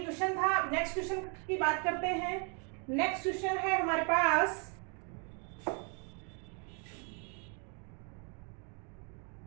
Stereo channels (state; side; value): quieter; left; 37.1 dB